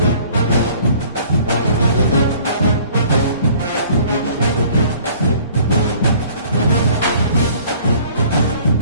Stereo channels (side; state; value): both; inverted; correlation -0.53